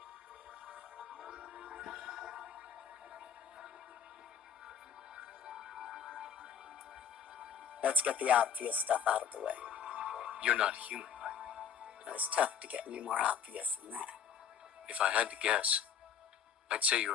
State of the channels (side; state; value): right; quieter; 7.8 dB